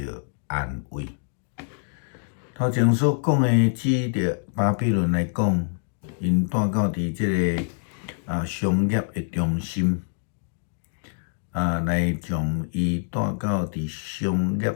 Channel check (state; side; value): silent; right; digital silence